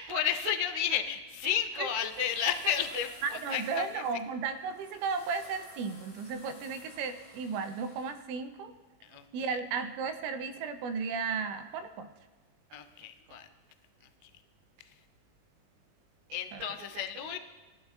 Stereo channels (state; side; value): late; left; 19 ms